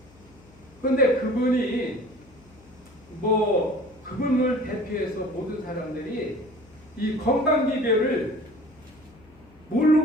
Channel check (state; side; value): noise; left; hum, 27 dB below the sound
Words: 근데 그분이 그분을 대표해서 모든 사람들이 이 건강 비결을